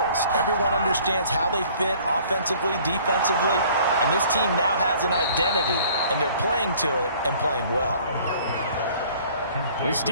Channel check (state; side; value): inverted; both; correlation -0.54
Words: Everyone understands how they fit offensively, defensively. And this team now has an identity. And they're playing to it and playing well. This